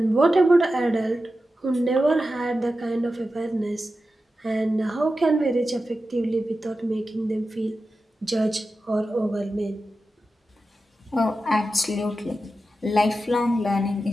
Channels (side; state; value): both; normal; correlation 0.92